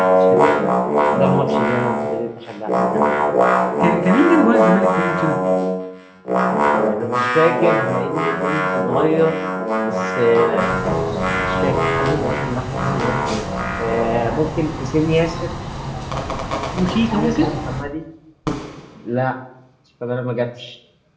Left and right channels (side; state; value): both; identical; correlation 1.00